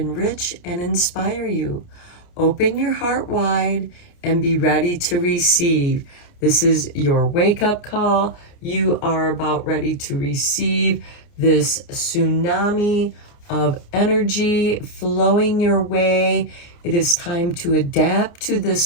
and inspire you. Open your heart wide and be ready to receive. This is your wake-up call. You are about ready to receive this tsunami of energy flowing your way. It is time to adapt to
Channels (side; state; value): right; late; 29 ms